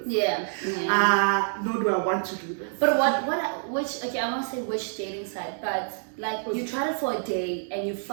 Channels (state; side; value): silent; left; digital silence